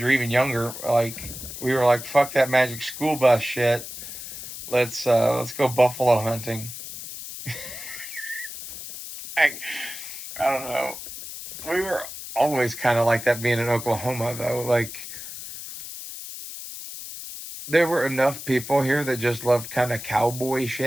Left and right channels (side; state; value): left; noise; hiss, 10 dB below the sound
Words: or even younger, like we were like, fuck that Magic School Bus shit. Let's go buffalo hunting. I don't know. We were always kind of like that being in Oklahoma, though. Like, there were enough people here that just loved kind of cowboy